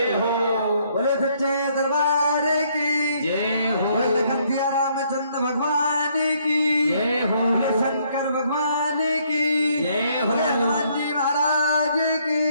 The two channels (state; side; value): inverted; both; correlation -0.68